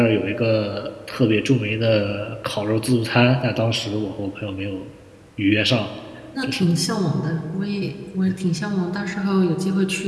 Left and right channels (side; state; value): both; identical; correlation 1.00